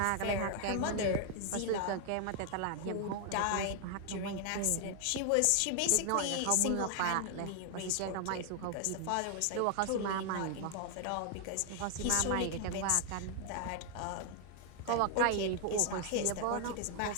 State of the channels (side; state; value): both; different; correlation 0.00